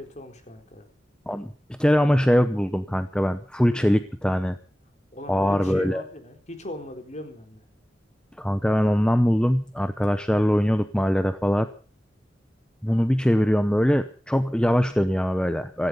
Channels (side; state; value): both; normal; correlation 0.97